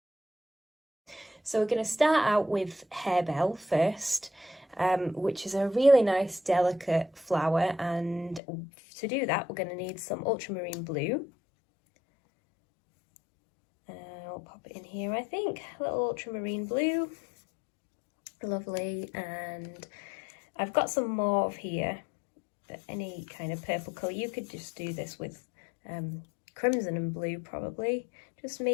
So we're going to start out with harebell first, which is a really nice delicate flower, and to do that we're going to need some ultramarine blue. I'll pop it in here, I think, a little ultramarine blue, lovely, and I've got some mauve here, but any kind of purple colour. You could just do this with crimson and blue probably, just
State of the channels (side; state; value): right; drops out; at 8.4 s